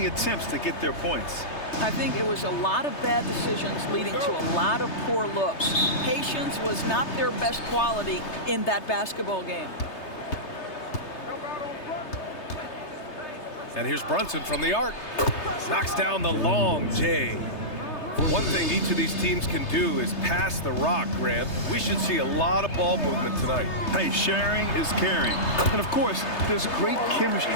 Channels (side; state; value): right; late; 3.3 ms